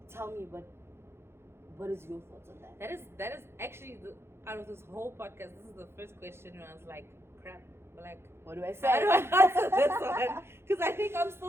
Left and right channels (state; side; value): late; left; 0.12 ms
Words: tell me what is your thoughts on that? That is actually out of this whole podcast, this is the first question where I was like, crap. Like, what do I say? I don't answer this one because I think I'm